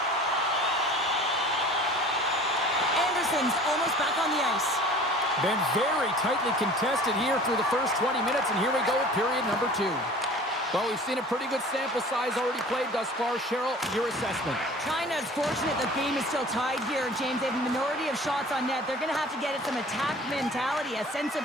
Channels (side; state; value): both; normal; correlation 0.45